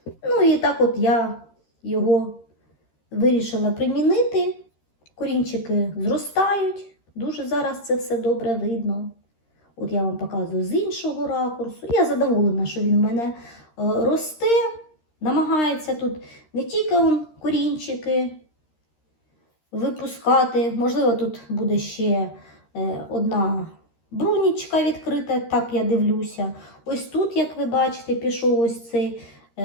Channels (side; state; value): right; late; 13 ms